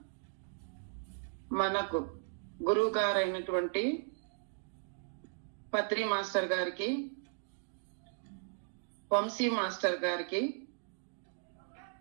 మనకు గురువు గారైనటువంటి పత్రి మాస్టర్ గారికి, వంశీ మాస్టర్ గారికి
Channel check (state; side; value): silent; left; digital silence